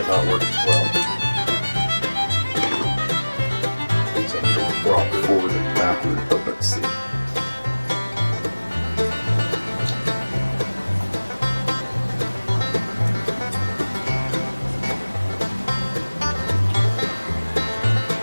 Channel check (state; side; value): inverted; both; correlation -1.00